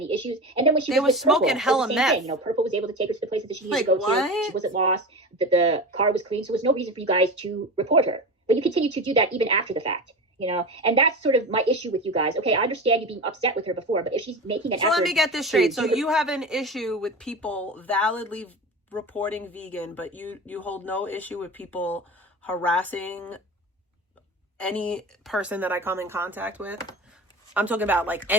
issues. And then when she was with smoking Purple, hella it was the same meth. thing. You know, Purple was able to take her to the places that she needed Like, to go what? to. She wasn't lost. The car was clean, so there was no reason for you guys to report her. But you continue to do that even after the fact. You know, and that's sort of my issue with you guys. Okay, I understand you being upset with her before, but if she's making an effort. So let me get this straight. So you have an issue with people validly reporting Vegan, but you hold no issue with people harassing any person that I come in contact with? I'm talking about like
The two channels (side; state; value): both; normal; correlation 0.28